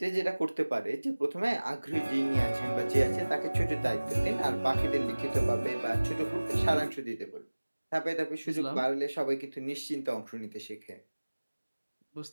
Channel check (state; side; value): inverted; both; correlation -1.00